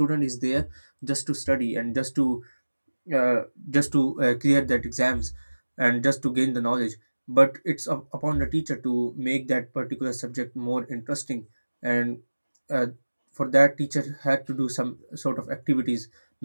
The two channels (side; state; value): both; inverted; correlation -1.00